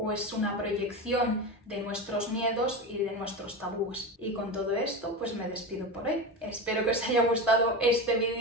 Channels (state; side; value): normal; both; correlation 0.22